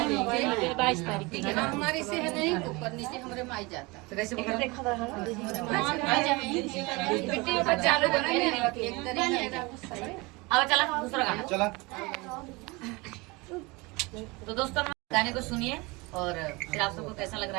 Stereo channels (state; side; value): quieter; left; 25.0 dB